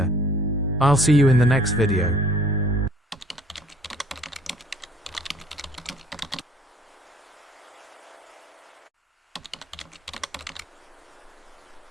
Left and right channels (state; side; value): normal; both; correlation 0.55